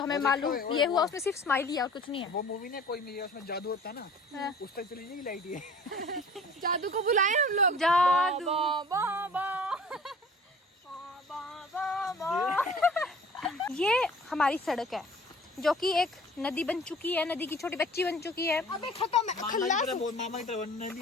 हमें मालूम ये हुआ उसमें सिर्फ स्माइल ही और कुछ नहीं है। वो मूवी ने कोई नहीं, उसमें जादू होता ना, उस तक चली जाएगी लाइट ये। जादू को बुलाए हम लोग। जादू ये हमारी सड़क है जो कि एक नदी बन चुकी है, नदी की छोटी बच्ची बन चुकी है। अबे खत्म है, खल्लास। मामा की तरह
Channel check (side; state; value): both; normal; correlation 0.47